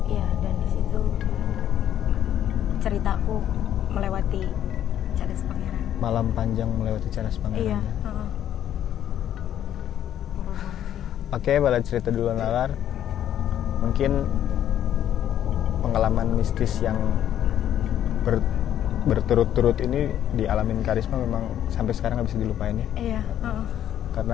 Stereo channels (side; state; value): right; quieter; 10.8 dB